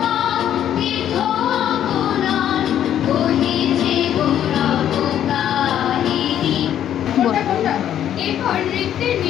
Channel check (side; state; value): right; quieter; 10.5 dB